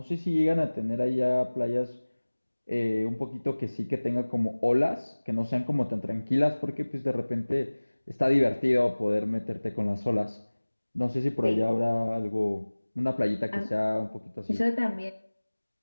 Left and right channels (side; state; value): both; inverted; correlation -1.00